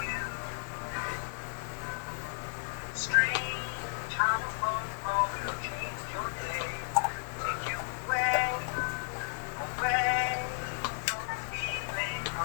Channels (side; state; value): right; silent; 55 dB below the other